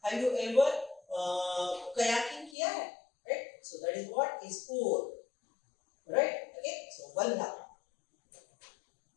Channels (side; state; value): right; drops out; at 2.6 s